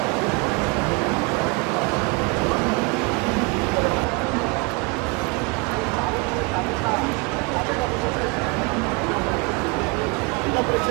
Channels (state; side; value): quieter; left; 29.1 dB